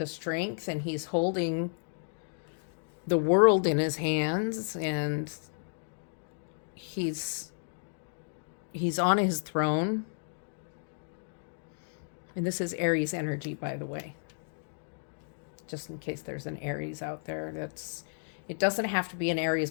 strength? And he's holding the world in his hands, and he's on his throne. And this is Aries energy, by the way, just in case there's an Aries out there. It doesn't have to be an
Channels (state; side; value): silent; right; digital silence